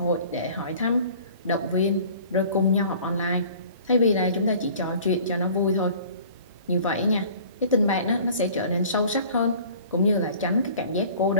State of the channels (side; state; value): both; inverted; correlation -0.48